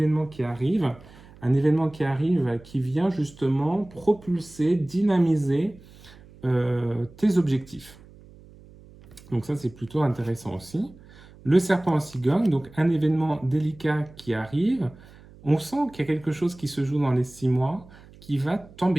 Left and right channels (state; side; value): noise; right; hum, 22 dB below the sound